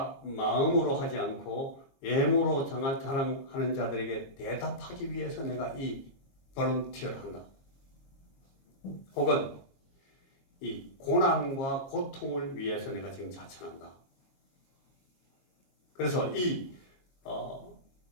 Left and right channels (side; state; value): right; late; 22 ms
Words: 마음으로 하지 않고 외모로 자랑하는 자들에게 대답하기 위해서 내가 이 볼런티어를 한다. 혹은 이 고난과 고통을 위해서 내가 지금 자천한다. 그래서 이